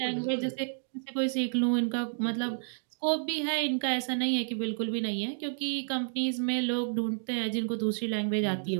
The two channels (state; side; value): silent; left; digital silence